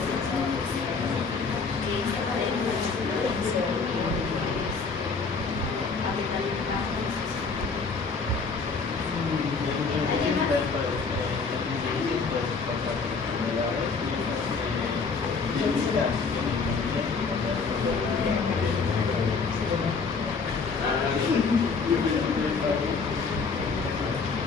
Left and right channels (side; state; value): right; quieter; 4.8 dB